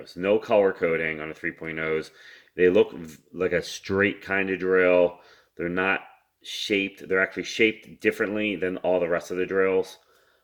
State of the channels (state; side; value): identical; both; correlation 1.00